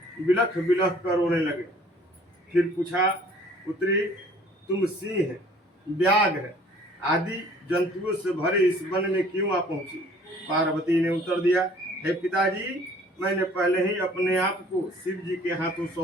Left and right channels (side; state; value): both; normal; correlation 0.54